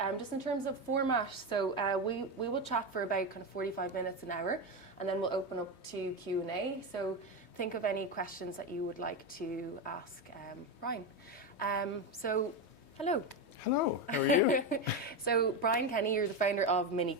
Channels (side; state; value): right; late; 3.2 ms